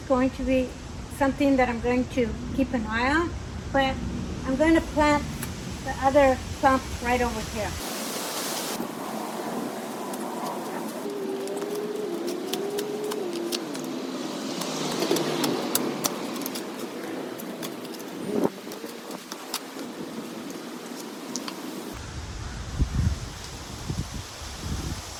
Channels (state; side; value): identical; both; correlation 1.00